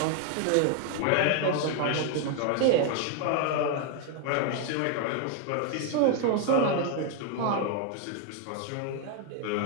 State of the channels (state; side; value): different; both; correlation 0.00